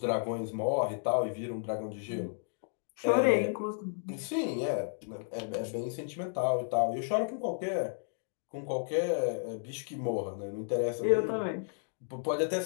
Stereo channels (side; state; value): right; silent; digital silence